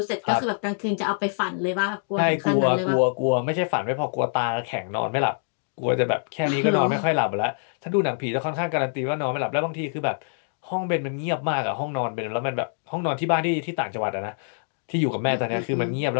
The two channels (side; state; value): right; silent; digital silence